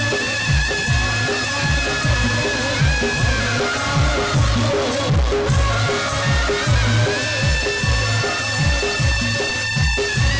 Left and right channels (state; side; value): identical; both; correlation 1.00